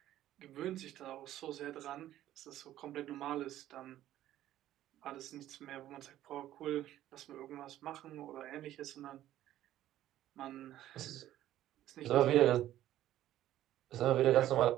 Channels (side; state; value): left; quieter; 13.2 dB